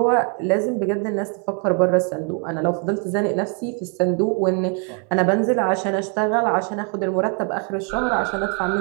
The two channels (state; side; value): quieter; left; 38.3 dB